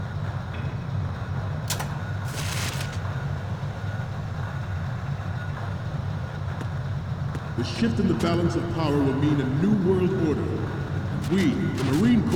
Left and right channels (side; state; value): both; identical; correlation 1.00